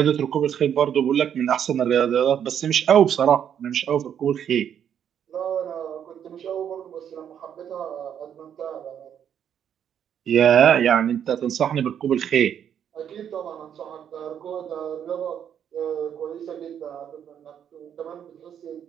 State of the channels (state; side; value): quieter; left; 8.9 dB